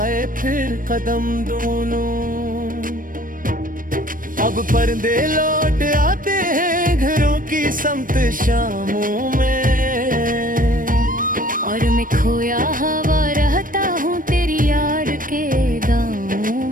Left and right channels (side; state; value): left; late; 0.40 ms